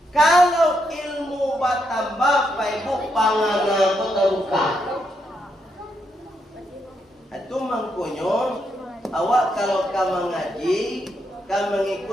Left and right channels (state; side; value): normal; both; correlation 0.79